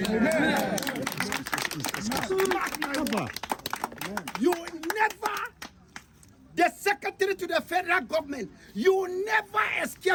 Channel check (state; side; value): identical; both; correlation 1.00